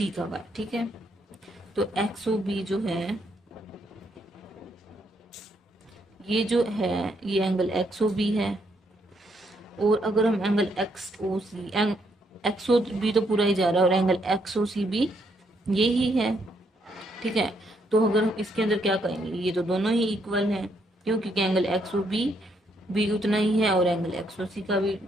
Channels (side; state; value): both; normal; correlation 0.74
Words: का है। ठीक है, तो एक्स ओ बी जो है ये जो है ये एंगल एक्स ओ बी है, और अगर हम एंगल एक्स ओ सी, एक्स ओ बी तो पूरा ही जा रहा है और एंगल एक्स ओ सी भी ये ही है। ठीक है, तो अगर हम इसके अंदर क्या करेंगे, ये तो दोनों ही इक्वल हैं, क्यों, क्योंकि एंगल एक्स ओ बी भी उतना ही है और एंगल एक्स ओ सी का भी